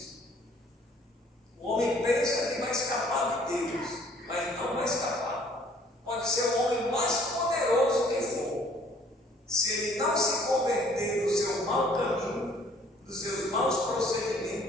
O homem pensa que vai escapar de Deus, mas não vai escapar. Pode ser o homem mais poderoso que for. Se ele não se converter do seu mau caminho, dos seus maus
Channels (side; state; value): both; normal; correlation 0.58